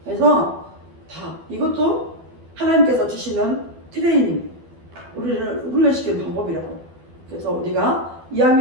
그래서 다 이것도 하나님께서 주시는 트레이닝, 우리를 훈련시키는 방법이라고. 그래서 우리가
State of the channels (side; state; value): left; late; 12 ms